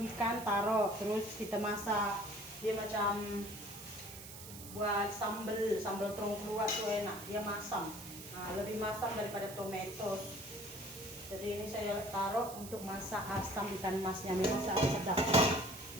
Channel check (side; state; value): right; noise; hiss, 13 dB below the sound